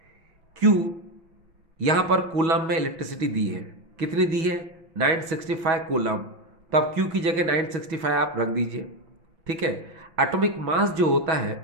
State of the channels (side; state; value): left; late; 6.2 ms